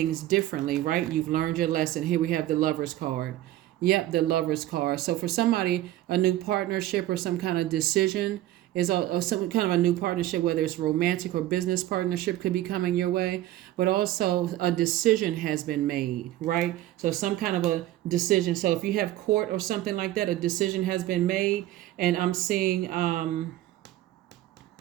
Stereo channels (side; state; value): left; quieter; 14.6 dB